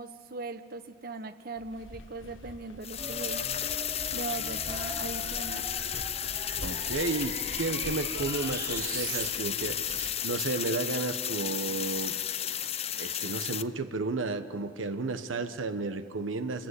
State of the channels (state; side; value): normal; both; correlation 0.07